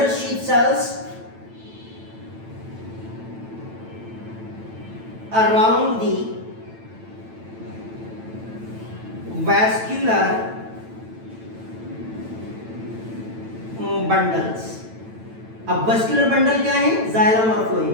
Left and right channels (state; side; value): late; left; 9.0 ms